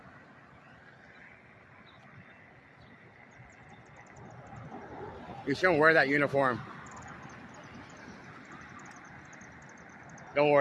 You shouldn't wear that uniform. Don't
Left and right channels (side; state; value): both; identical; correlation 1.00